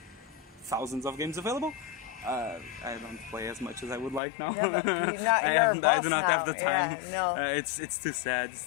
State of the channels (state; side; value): drops out; right; at 4.2 s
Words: thousands of games available. I don't play as much as I would like now. No, but I do not have the time. It's too sad. It's